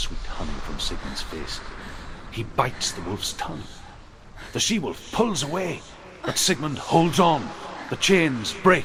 honey from Sigmund's face. He bites the wolf's tongue. The she-wolf pulls away, but Sigmund holds on. The chains break,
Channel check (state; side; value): identical; both; correlation 1.00